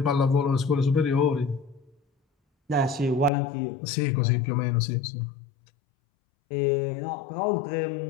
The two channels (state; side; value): drops out; right; at 3.3 s